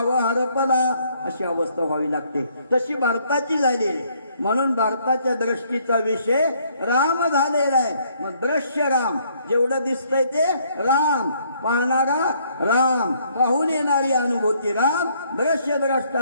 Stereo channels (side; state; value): both; inverted; correlation -0.66